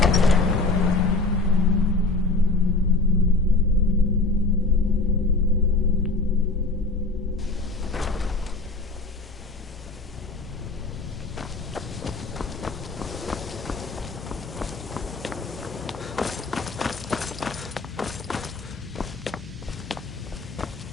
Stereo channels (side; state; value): right; quieter; 3.3 dB